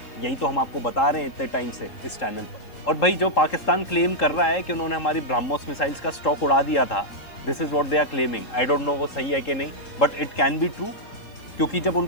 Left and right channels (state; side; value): late; right; 3.8 ms